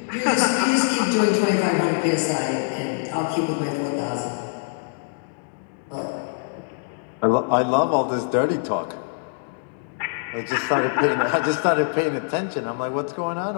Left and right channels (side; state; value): right; silent; digital silence